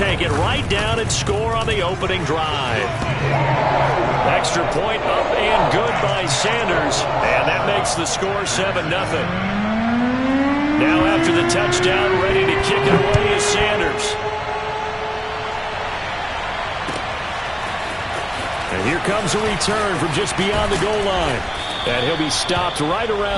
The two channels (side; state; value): both; identical; correlation 1.00